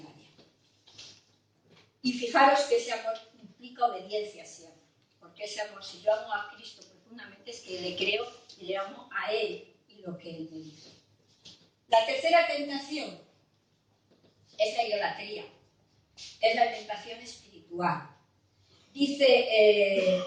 área. Y fijaros que ese amor implica obediencia siempre, porque ese amor, si yo amo a Cristo profundamente, es que le creo y le amo a Él y lo que Él me dice. La tercera tentación es la idolatría, es la tentación espiritual. Dice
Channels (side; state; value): both; identical; correlation 1.00